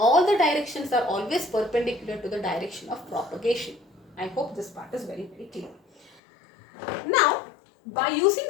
the directions are always perpendicular to the direction of propagation. I hope this part is very clear. Now, by using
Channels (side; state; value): right; drops out; at 6.2 s